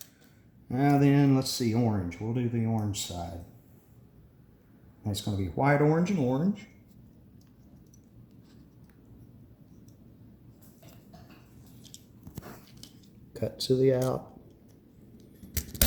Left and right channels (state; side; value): identical; both; correlation 1.00